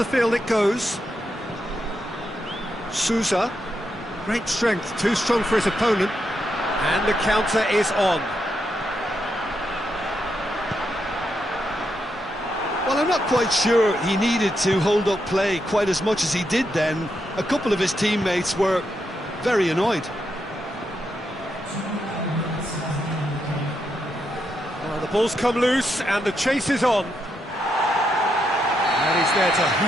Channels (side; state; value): both; normal; correlation 0.82